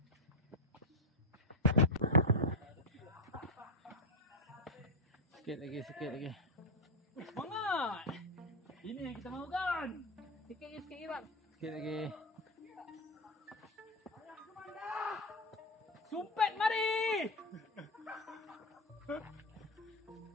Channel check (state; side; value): normal; both; correlation 0.09